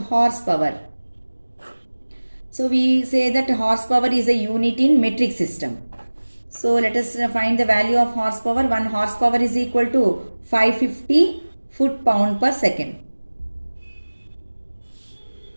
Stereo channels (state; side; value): inverted; both; correlation -1.00